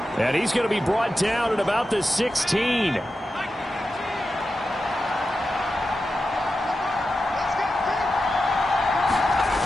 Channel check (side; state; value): both; normal; correlation 0.91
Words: And he's going to be brought down at about the 16.